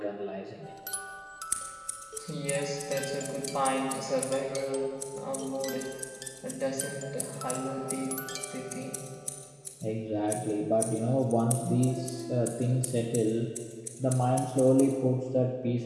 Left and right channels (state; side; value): identical; both; correlation 1.00